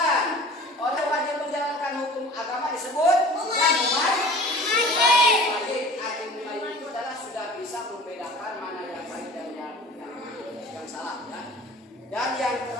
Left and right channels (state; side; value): normal; both; correlation 0.43